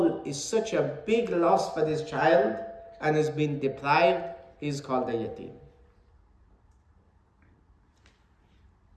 is such a big loss for this child and has been deprived. He's called a yatim.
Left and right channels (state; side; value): identical; both; correlation 1.00